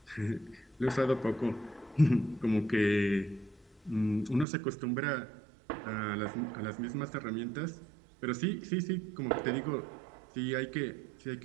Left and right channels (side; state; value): left; drops out; at 4.5 s